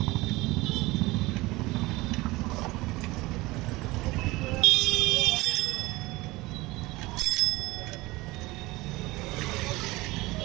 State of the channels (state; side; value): quieter; left; 21.0 dB